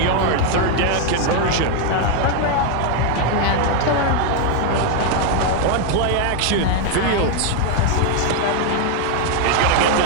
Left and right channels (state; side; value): different; both; correlation 0.01